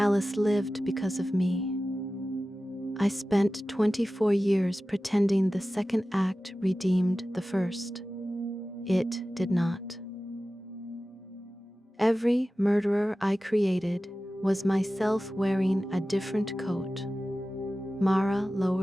lived because of me. I spent 24 years pretending the second act redeemed the first. It did not. Every murderer I created was myself wearing a different coat. Mara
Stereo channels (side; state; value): both; normal; correlation 0.95